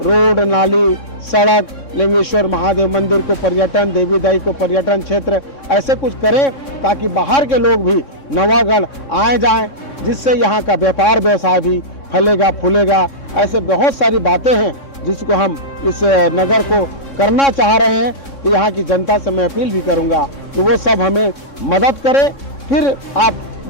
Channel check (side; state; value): right; late; 3.6 ms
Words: नाली, सड़क, लिंगेश्वर महादेव मंदिर को पर्यटन, देवीदाई को पर्यटन क्षेत्र, ऐसे कुछ करें ताकि बाहर के लोग भी नवागढ़ आए जाएं, जिससे यहाँ का व्यापार व्यवसाय भी फलेगा फूलेगा। ऐसे बहुत सारी बातें हैं जिसको हम इस नगर को करना चाह रहे हैं। तो यहाँ की जनता से मैं अपील भी करूँगा कि वो सब हमें मदद करें, फिर आप